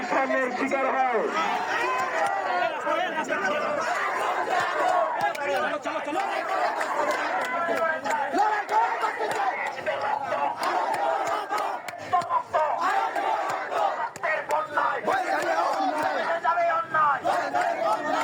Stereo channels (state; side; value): identical; both; correlation 1.00